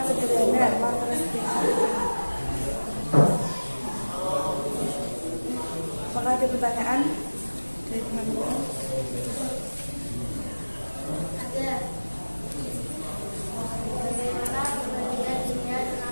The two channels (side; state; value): both; inverted; correlation -1.00